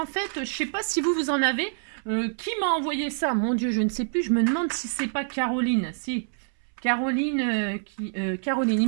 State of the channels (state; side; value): silent; left; 61 dB below the other